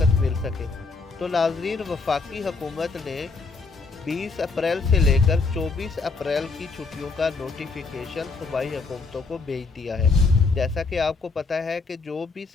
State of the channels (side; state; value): right; quieter; 4.2 dB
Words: मिल सके। तो नाजरीन, वफाकी हुकूमत ने 20 अप्रैल से लेकर 24 अप्रैल की छुट्टियों का नोटिफिकेशन सूबाई हुकूमतों को भेज दिया है। जैसा कि आपको पता है कि जो भी